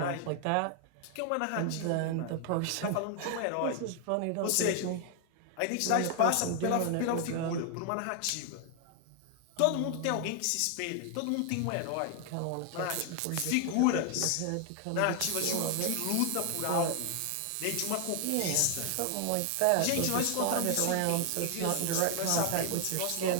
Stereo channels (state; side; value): different; both; correlation 0.00